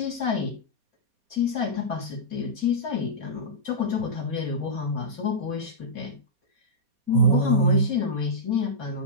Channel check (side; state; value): left; late; 4.2 ms